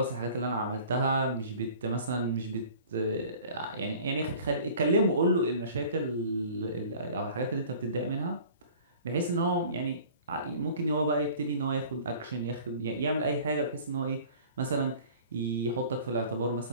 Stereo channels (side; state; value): both; inverted; correlation -0.46